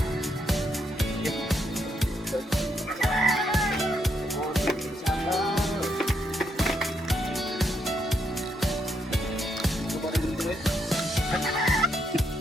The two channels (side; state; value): both; normal; correlation 0.77